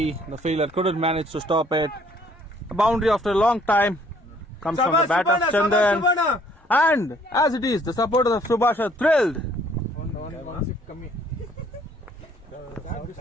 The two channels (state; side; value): normal; both; correlation 0.61